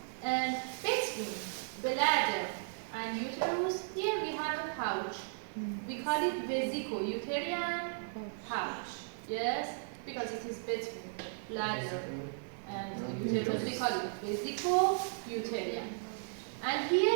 And between bladder and uterus, here we have a pouch. We call it vesico-uterine pouch. Yes, because it is between bladder and uterus, we call it vesico-uterine. And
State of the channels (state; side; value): silent; left; digital silence